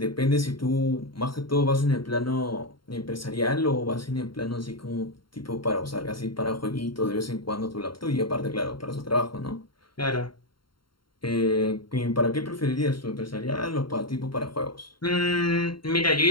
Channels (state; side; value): late; right; 0.73 ms